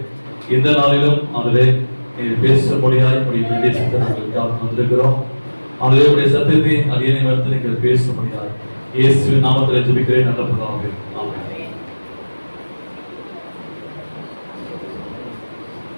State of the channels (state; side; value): inverted; both; correlation -1.00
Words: இந்த நாளிலும் அவரே நீர் பேசும்படியாய் உடைய தேசத்தை நாங்கள் வந்திருக்கிறோம். அவருடைய சத்தியத்தை அடியனை வந்து நீங்கள் பேசும்படியாய் இயேசுவின் நாமத்தில் ஜெபிக்கிறேன் நல்ல பிதாவே. ஆமென்.